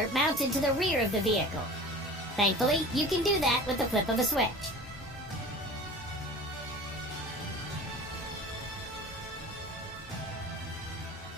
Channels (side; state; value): both; normal; correlation 0.39